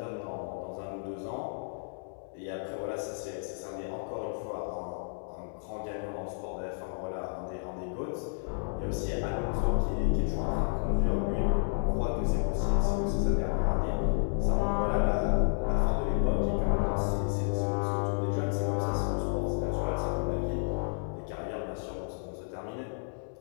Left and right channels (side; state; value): right; silent; digital silence